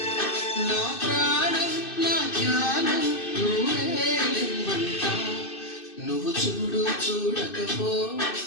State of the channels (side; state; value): right; late; 2.6 ms